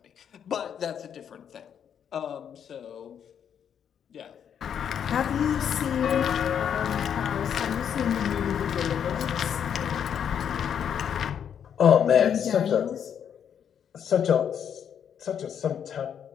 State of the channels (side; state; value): right; quieter; 8.4 dB